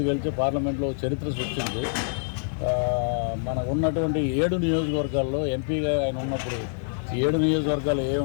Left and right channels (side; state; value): right; silent; digital silence